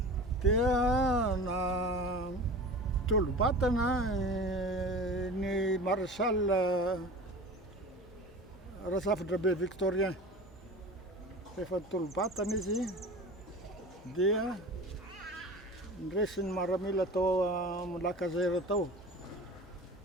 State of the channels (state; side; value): normal; both; correlation 0.36